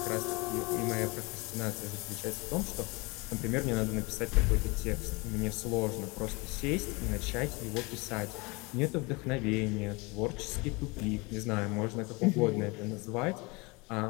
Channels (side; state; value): right; quieter; 26.5 dB